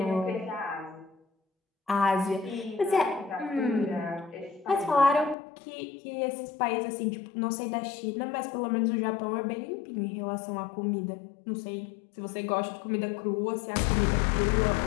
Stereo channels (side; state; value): right; drops out; at 5.4 s